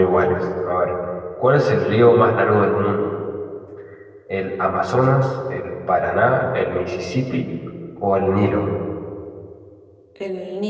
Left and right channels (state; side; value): identical; both; correlation 1.00